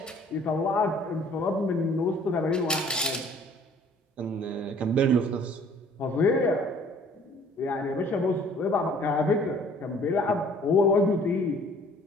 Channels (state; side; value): normal; both; correlation 0.54